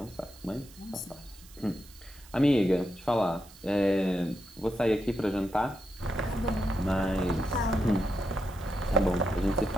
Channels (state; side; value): noise; right; hiss, 22 dB below the sound